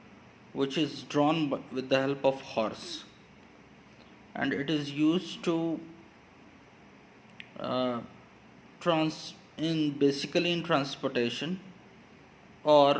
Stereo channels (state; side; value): identical; both; correlation 1.00